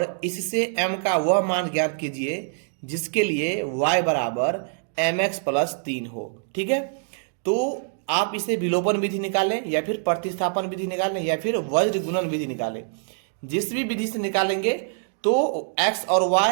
इससे m का वह मान ज्ञात कीजिए जिसके लिए y बराबर mx प्लस 3 हो। ठीक है, तो आप इसे विलोपन विधि निकालें या फिर प्रतिस्थापन विधि निकालें या फिर वज्र गुणन विधि निकालें। जिस भी विधि से निकालेंगे तो x और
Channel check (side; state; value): left; silent; digital silence